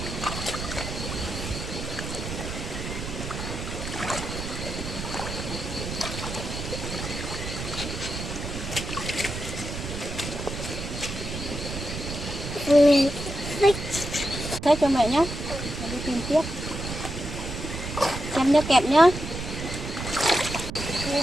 Thế cho mẹ nhé, đi tìm tiếp. Xem nhớ kẹp nhá.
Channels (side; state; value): right; noise; rumble, 6 dB below the sound